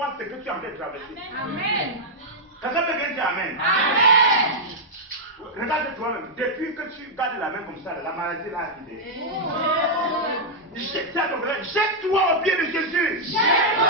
ce que tu es en train de traverser. Amen. Quelqu'un peut bien dire Amen. Amen. Regarde toi-même, depuis que tu gardes la main comme ça, la maladie là a quitté. Jette-toi au pied de Jésus.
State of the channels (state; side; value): normal; both; correlation -0.06